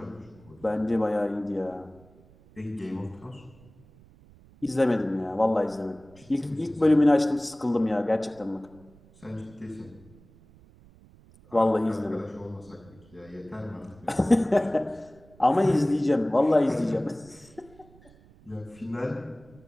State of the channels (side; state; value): right; noise; rumble, 26 dB below the sound